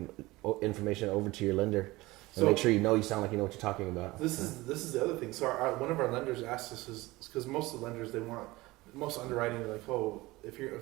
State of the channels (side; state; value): left; quieter; 20.3 dB